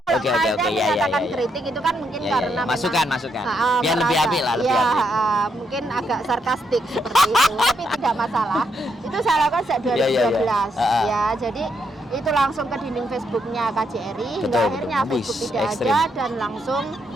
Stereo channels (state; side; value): normal; both; correlation 0.78